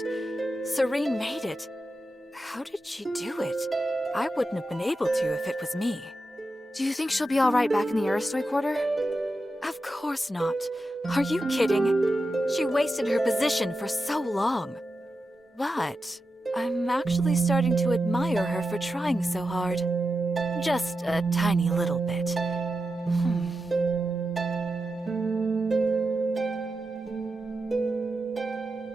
Serene made it. How did she do it? I wouldn't have been able to if it was me. Do you think she'll be all right back in the Aristoi quarter? Of course not. Are you kidding? She wasted her position for so long. But I'm actually starting to admire her for trying so hard. Just a tiny little bit.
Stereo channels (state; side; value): normal; both; correlation 0.90